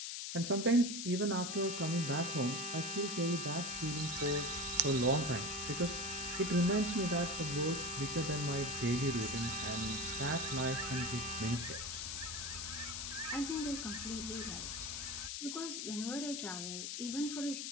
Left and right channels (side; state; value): left; noise; hiss, 4 dB below the sound